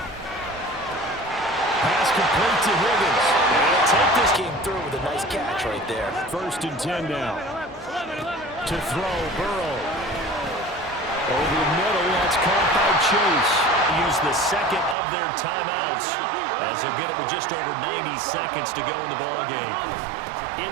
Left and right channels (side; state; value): left; drops out; at 15.0 s